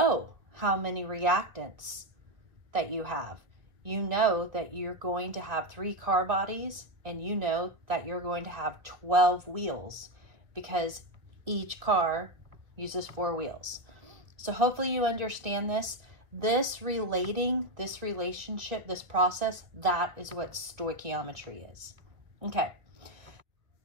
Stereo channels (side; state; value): left; late; 2.0 ms